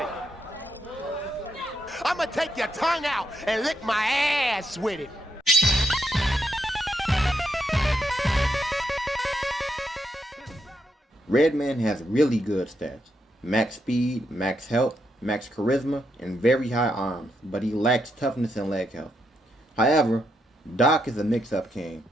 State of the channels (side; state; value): both; normal; correlation 0.80